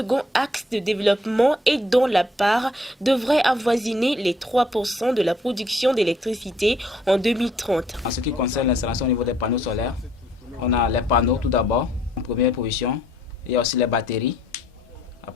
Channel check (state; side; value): normal; both; correlation 0.64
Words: axe de développement et dont la part devrait avoisiner les 3% de la production d'électricité en 2030. En ce qui concerne l'installation au niveau des panneaux solaires, on a les panneaux tout d'abord, en première position. Il y a aussi les batteries.